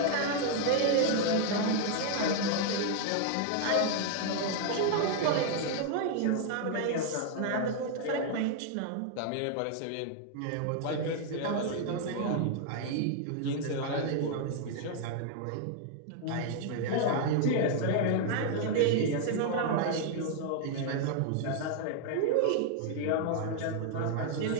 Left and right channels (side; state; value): both; different; correlation 0.00